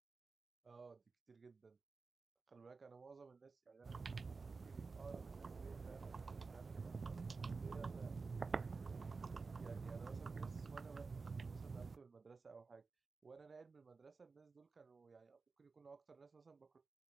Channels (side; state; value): left; quieter; 4.4 dB